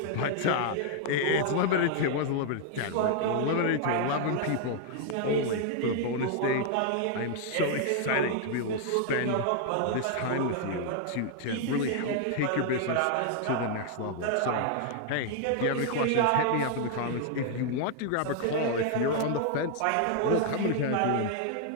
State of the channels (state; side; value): different; both; correlation 0.00